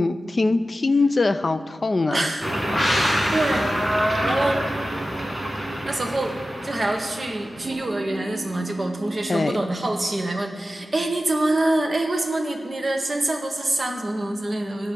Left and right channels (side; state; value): both; normal; correlation 0.94